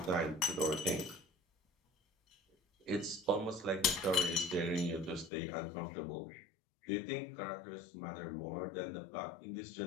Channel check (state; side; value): drops out; right; at 5.3 s